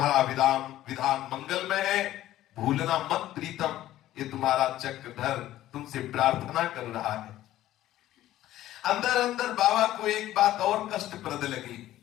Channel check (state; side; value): quieter; right; 14.1 dB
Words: विधान मंगल में है, भूलना मत प्रीतम। ये तुम्हारा चक्रधर तुमसे प्रार्थना कर रहा है। अंदर अंदर बाबा को एक बात और कष्टप्रद लगी।